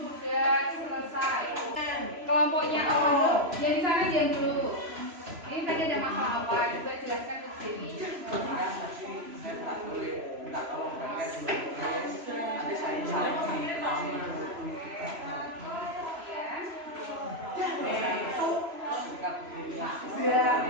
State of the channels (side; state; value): left; late; 3.0 ms